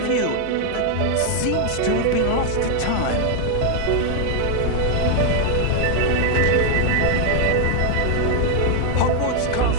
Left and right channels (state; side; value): different; both; correlation 0.00